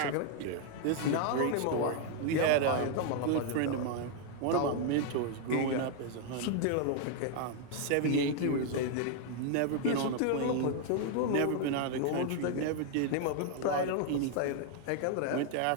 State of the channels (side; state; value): both; different; correlation 0.00